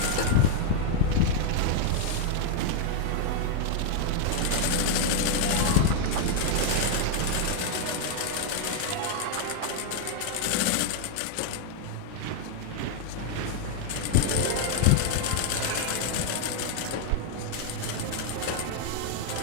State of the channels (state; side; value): different; both; correlation 0.00